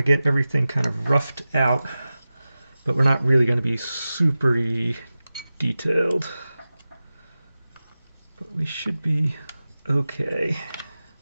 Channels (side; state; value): both; inverted; correlation -0.95